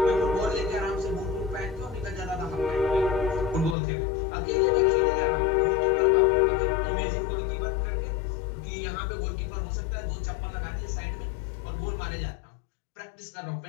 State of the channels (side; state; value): right; drops out; at 3.8 s